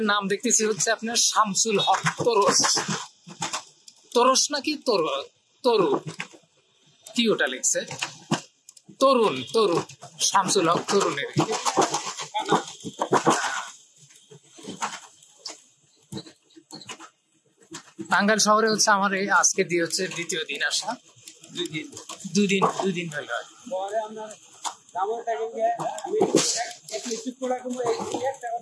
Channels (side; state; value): both; identical; correlation 1.00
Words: নাম দেখতেছি হচ্ছে আপনার শামসুল হক তোরস। তোরস নাকি তরু কি ওটা লিখছে? তরুণ শামসুল হক তরুণের। টাঙ্গাইল শহরে হচ্ছে আমার এই আজকে দিয়ে হচ্ছে দ্বিতীয় দিন আসা। দুই দিন হলো।